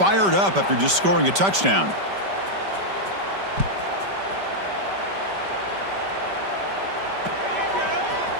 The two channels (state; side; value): late; left; 5.2 ms